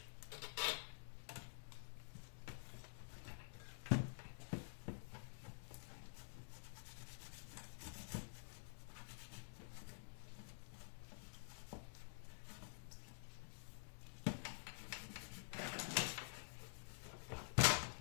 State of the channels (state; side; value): silent; right; digital silence